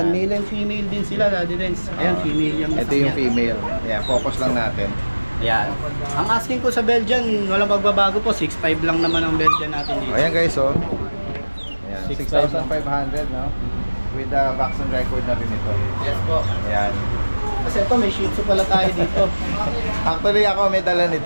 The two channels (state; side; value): inverted; both; correlation -1.00